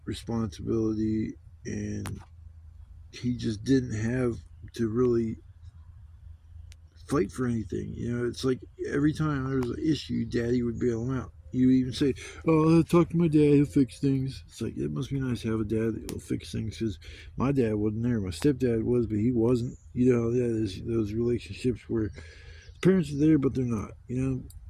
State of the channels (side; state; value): both; identical; correlation 1.00